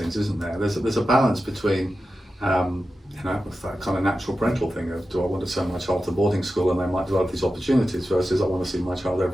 isn't there? There's a balance between with that kind of natural parental thing of, do I want to send my child to boarding school and they might develop these opportunities, versus I want to see my child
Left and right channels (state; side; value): normal; both; correlation 0.92